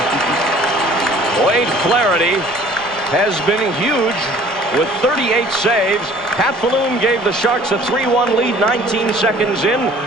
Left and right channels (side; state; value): both; normal; correlation 0.52